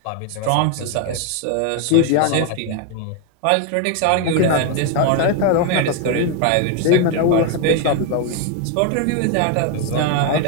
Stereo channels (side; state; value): both; different; correlation 0.01